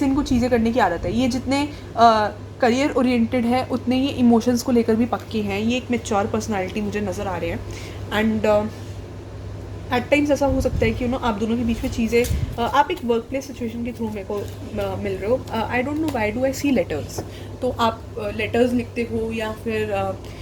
इनको चीज़ें करने की आदत है। ये जितने करियर ओरिएंटेड है उतने ये इमोशंस को लेकर भी पक्के हैं, ये एक मैच्योर पर्सनालिटी मुझे नज़र आ रहे हैं एंड एट टाइम्स ऐसा हो सकता है कि आप दोनों के बीच में चीज़ें आप एक वर्क प्लेस सिचुएशन के थ्रू मेरे को मिल रहे हो। I don't know why do I see letters, तो आप लेटर्स लिखते हो या फिर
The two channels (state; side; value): identical; both; correlation 1.00